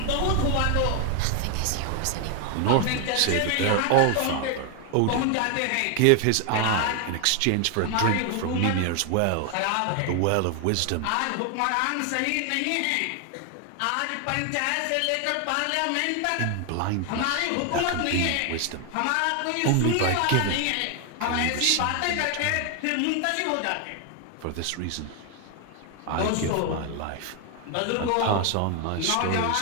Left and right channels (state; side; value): different; both; correlation 0.00